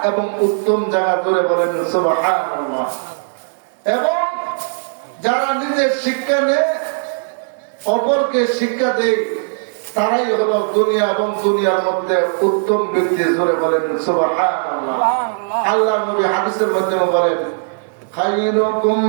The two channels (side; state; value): left; silent; digital silence